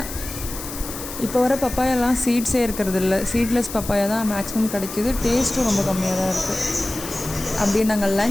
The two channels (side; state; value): left; noise; hiss, 10 dB below the sound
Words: இப்போ வர பப்பாயெல்லாம் சீட்ஸே இருக்கிறது இல்லை, சீட்லெஸ் பப்பாயா தான் மேக்ஸிமம் கிடைக்கிது. டேஸ்ட்டும் ரொம்ப கம்மியாக தான் இருக்குது. அப்படியே நாங்கள்